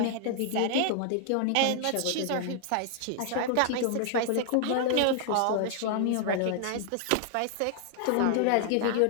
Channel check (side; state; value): both; different; correlation 0.00